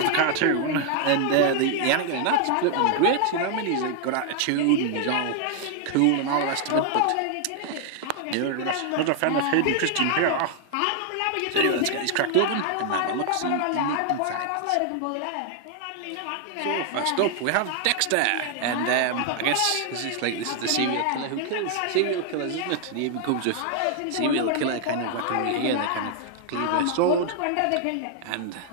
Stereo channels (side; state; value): both; different; correlation 0.00